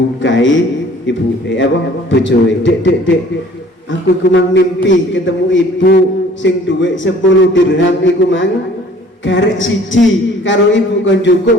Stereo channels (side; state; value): both; normal; correlation 0.52